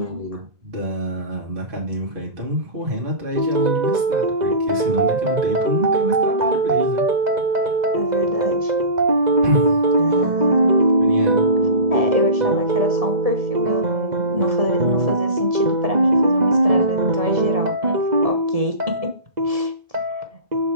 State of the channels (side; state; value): left; late; 1.7 ms